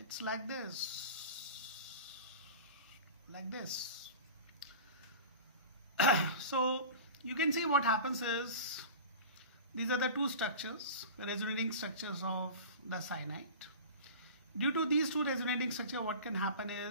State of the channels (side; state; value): both; inverted; correlation -0.35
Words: like this. Like this. So you can see what happens is these are the two structures, the resonating structures of the cyanide. Due to these two resonating structures, what can happen